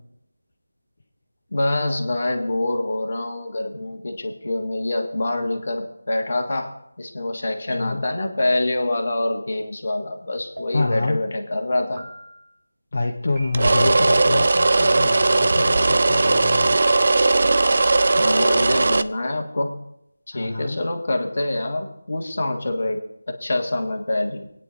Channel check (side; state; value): both; inverted; correlation -0.96